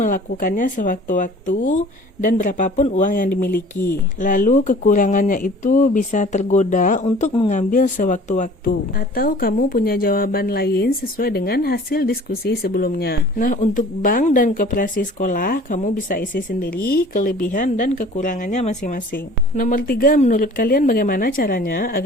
sewaktu-waktu dan berapapun uang yang dimiliki. Lalu kekurangannya itu bisa tergoda untuk mengambil sewaktu-waktu. Atau kamu punya jawaban lain sesuai dengan hasil diskusi sebelumnya. Nah, untuk bank dan koperasi sekolah, kamu bisa isi sendiri kelebihan dan kekurangannya masing-masing. Nomor 3, menurut kalian bagaimana caranya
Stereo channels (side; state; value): both; normal; correlation 0.47